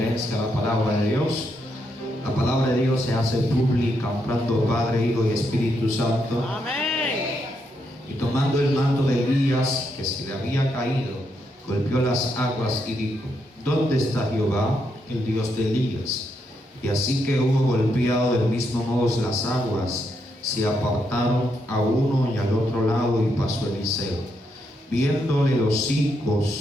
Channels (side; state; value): both; normal; correlation 0.79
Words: a la palabra de Dios. La palabra de Dios se hace pública, honrando Padre, Hijo y Espíritu Santo. Amén. Y tomando el manto de Elías, que se le había caído, golpeó las aguas y dijo: ¿Dónde está Jehová, el Dios de Elías? Y así que hubo golpeado del mismo modo las aguas, se apartaron a uno y al otro lado, y pasó Eliseo. Viéndole los